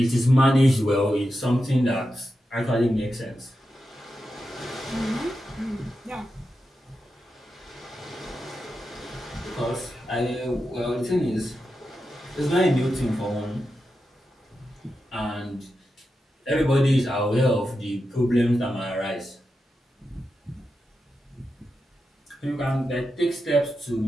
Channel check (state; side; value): normal; both; correlation 0.89